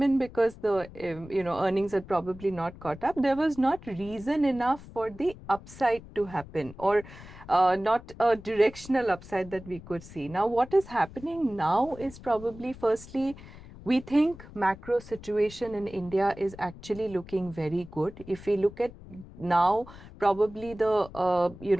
in because the earnings had probably not caught up, there was not reason enough for the upside to happen, or not a directional upside that we could see. Now what is happening now is probably, firstly, we think macro situation in India is actually looking very good. If we look at now, probably the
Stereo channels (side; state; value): left; noise; rumble, 17 dB below the sound